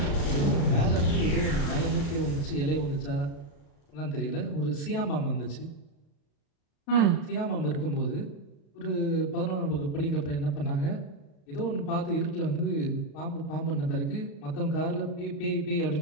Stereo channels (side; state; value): right; late; 35 ms